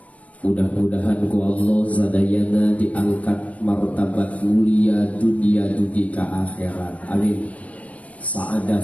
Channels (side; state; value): right; late; 0.067 ms